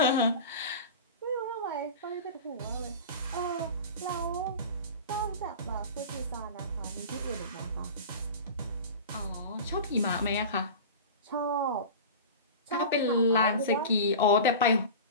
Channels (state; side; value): inverted; both; correlation -0.32